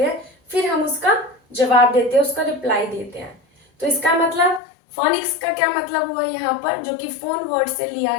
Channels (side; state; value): right; drops out; at 4.6 s